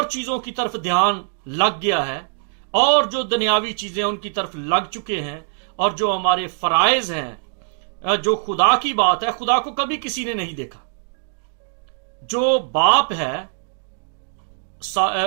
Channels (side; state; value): left; silent; digital silence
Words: चीजों की तरफ ध्यान लग गया है, और जो दुनियावी चीजें उनकी तरफ लग चुके हैं, और जो हमारे फराइज हैं, जो खुदा की बात है, खुदा को कभी किसी ने नहीं देखा। जो बाप है